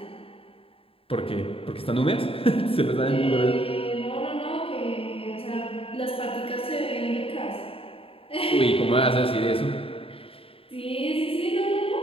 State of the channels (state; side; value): late; right; 0.27 ms